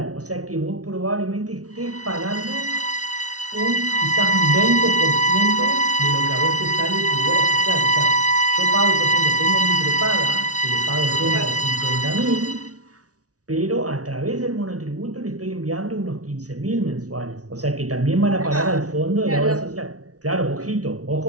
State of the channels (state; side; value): late; left; 0.67 ms